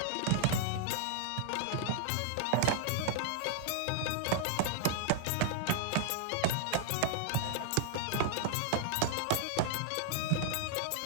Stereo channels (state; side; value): different; both; correlation -0.01